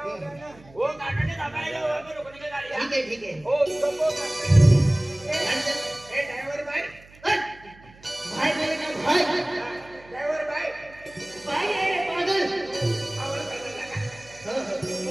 गाना. वो गाना ने दबाएगा वो हमें रुकने की गाड़ी है. ठीक है. ओ सबको ए ड्राइवर भाई. भाई बोले ना भाई. ड्राइवर भाई. भाई अरे पागल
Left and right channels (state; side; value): noise; right; hum, 24 dB below the sound